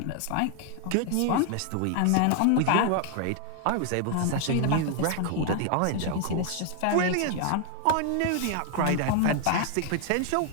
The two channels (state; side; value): different; both; correlation 0.00